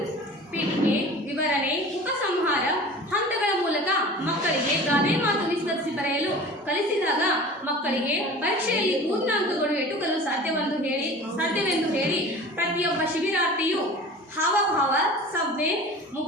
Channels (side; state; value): both; normal; correlation 0.39